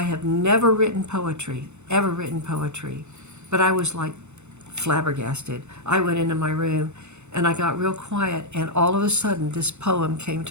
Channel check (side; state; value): left; late; 0.82 ms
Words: have never written poetry, ever written poetry. But I was like flabbergasted. I went into my room, and I got real quiet, and all of a sudden this poem came